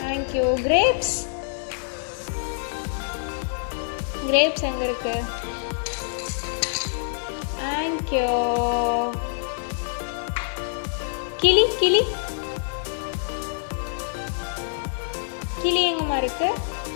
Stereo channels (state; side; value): silent; right; digital silence